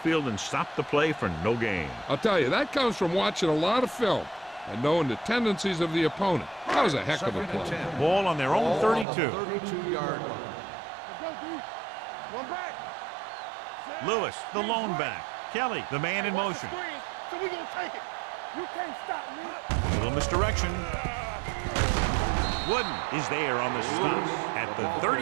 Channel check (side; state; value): left; drops out; at 9.1 s